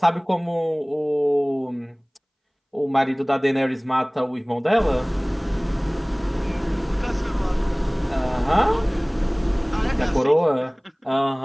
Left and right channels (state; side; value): identical; both; correlation 1.00